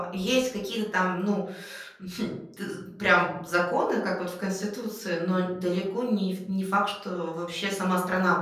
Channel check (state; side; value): identical; both; correlation 1.00